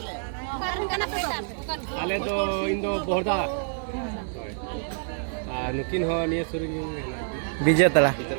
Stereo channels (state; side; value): silent; left; 60 dB below the other